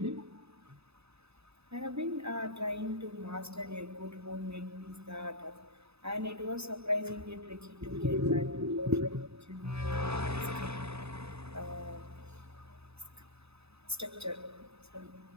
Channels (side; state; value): left; late; 0.79 ms